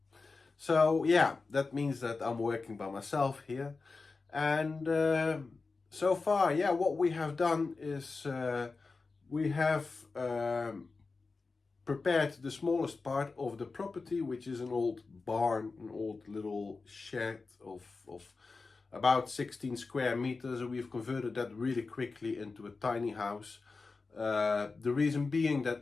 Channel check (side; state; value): right; quieter; 4.1 dB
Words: So yeah, that means that I'm working by myself here. And so far, yeah, what we have done is We have prepared the smallest part of the property, which is an old barn, an old little shed of about 16 square meters, and we've converted that really quickly into a tiny house. The reason being